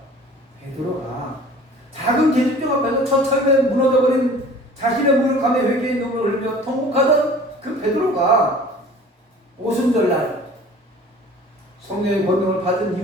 베드로가 작은 계집종 앞에서 처참에 무너져버린 자신의 무력함에 회개의 눈물을 흘리며 통곡하던 그 베드로가 오순절날 성령의 권능을 받은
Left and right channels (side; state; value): both; normal; correlation 0.46